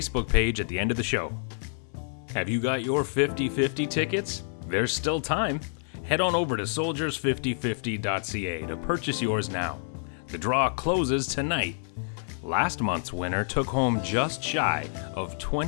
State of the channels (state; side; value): silent; right; digital silence